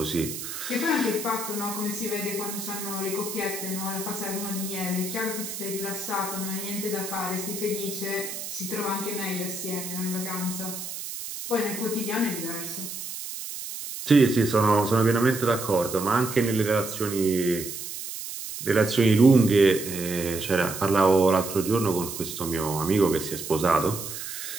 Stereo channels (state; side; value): noise; right; hiss, 8 dB below the sound